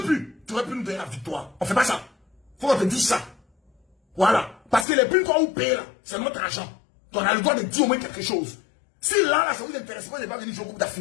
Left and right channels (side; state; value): right; drops out; at 4.9 s